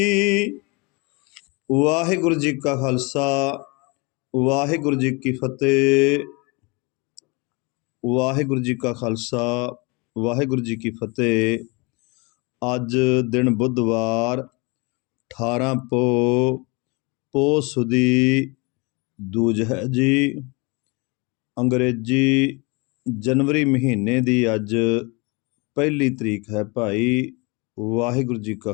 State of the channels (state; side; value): quieter; right; 28.4 dB